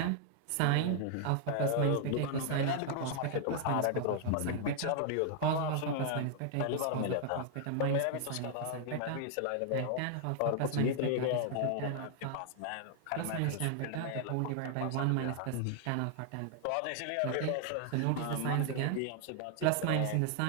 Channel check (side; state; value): both; different; correlation 0.00